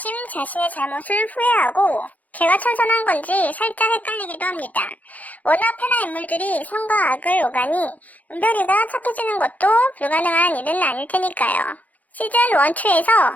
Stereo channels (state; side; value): late; right; 0.077 ms